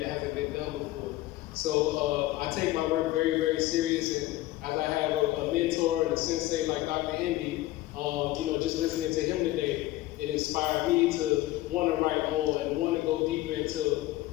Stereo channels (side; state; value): right; quieter; 16.7 dB